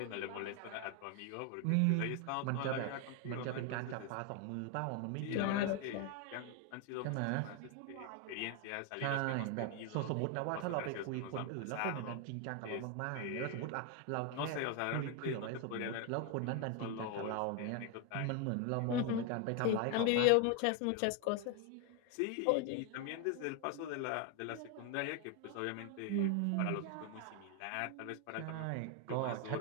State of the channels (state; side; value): different; both; correlation 0.01